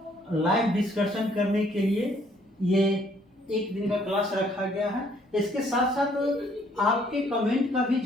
लाइव डिस्कशन करने के लिए ये एक दिन का क्लास रखा गया है। इसके साथ साथ आपके कमेंट का भी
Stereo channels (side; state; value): both; normal; correlation 0.64